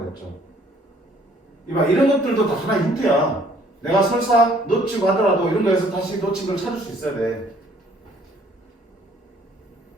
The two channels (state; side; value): normal; both; correlation 0.60